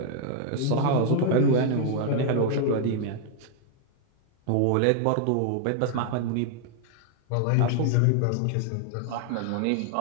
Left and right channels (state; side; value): different; both; correlation 0.00